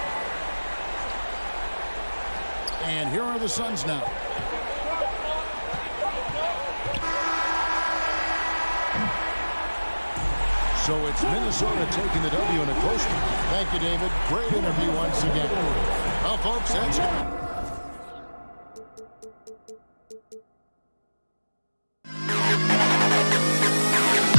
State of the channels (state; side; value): inverted; both; correlation -1.00